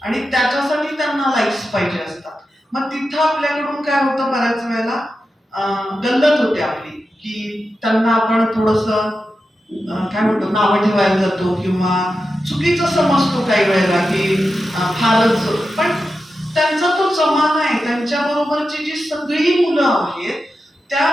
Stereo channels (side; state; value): both; normal; correlation 0.90